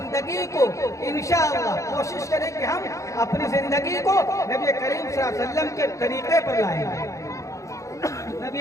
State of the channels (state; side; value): late; right; 0.15 ms